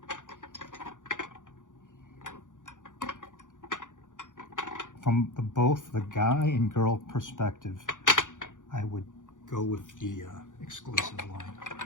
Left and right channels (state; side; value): late; right; 0.87 ms